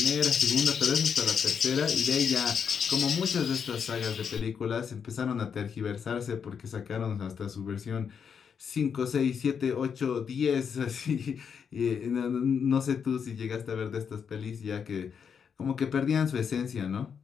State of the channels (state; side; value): quieter; right; 6.9 dB